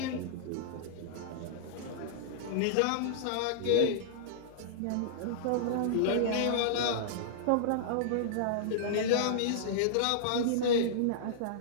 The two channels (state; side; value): different; both; correlation -0.02